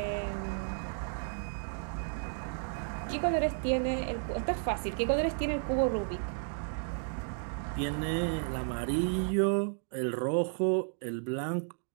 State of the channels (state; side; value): silent; left; digital silence